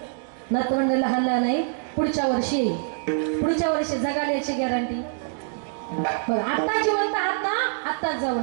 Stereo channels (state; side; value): silent; left; digital silence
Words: नातवंड लहान लहान आहे, पुढच्या वर्षी येईल, पुढच्या वर्षी जगाल याची गॅरंटी. बरं आता जिवंत आहात ना, आत्ताच